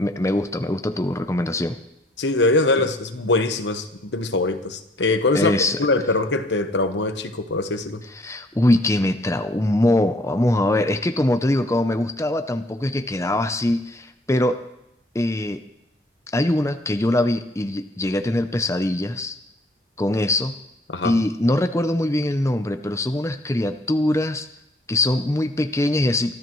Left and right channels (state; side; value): normal; both; correlation 0.59